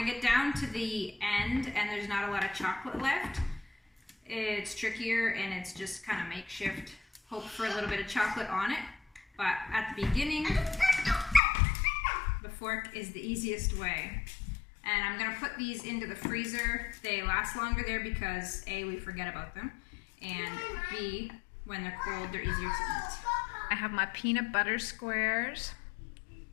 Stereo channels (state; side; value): drops out; right; at 11.4 s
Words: get down to the end and there's not a lot of chocolate left, it's trickier and it's just kind of makeshift. Hope for a little bit of chocolate on it. But at the beginning, the fork is the easiest way. And I'm gonna put these into the freezer. They last longer there because A, we forget about them, and B, when they're cold, they're easier to eat. I have my peanut butter squares.